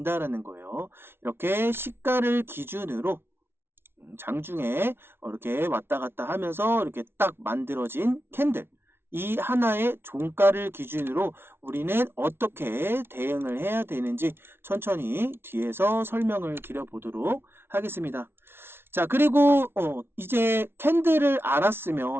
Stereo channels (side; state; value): left; late; 0.11 ms